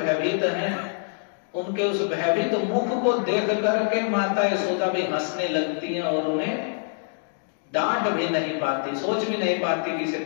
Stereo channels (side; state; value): right; silent; digital silence